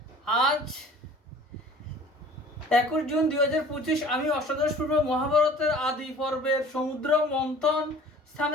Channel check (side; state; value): both; normal; correlation 0.48